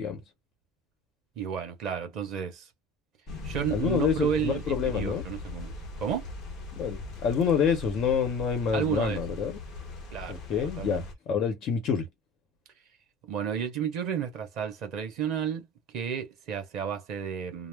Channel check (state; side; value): normal; both; correlation 0.37